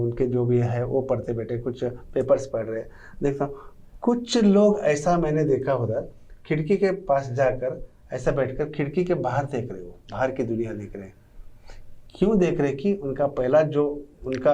जो भी है वो पढ़ते बैठे, कुछ पेपर्स पढ़ रहे। देखता हूँ कुछ लोग ऐसा मैंने देखा उधर, खिड़की के पास जाकर ऐसा बैठकर खिड़की के बाहर देख रहे हो, बाहर की दुनिया देख रहे। क्यों देख रहे कि उनका पहला जो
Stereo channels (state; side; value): identical; both; correlation 1.00